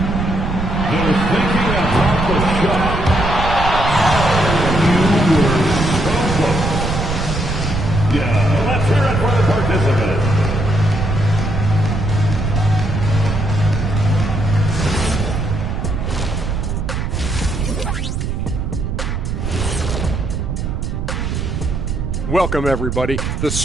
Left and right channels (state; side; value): noise; right; rumble, 2 dB below the sound